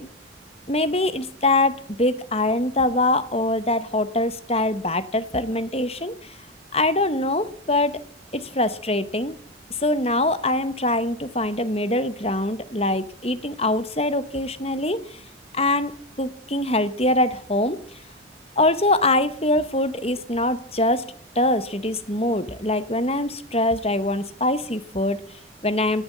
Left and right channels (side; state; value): both; normal; correlation 0.13